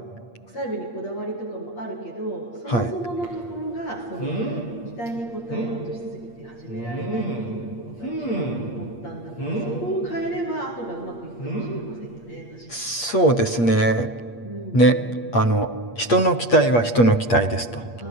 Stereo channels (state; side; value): late; right; 8.5 ms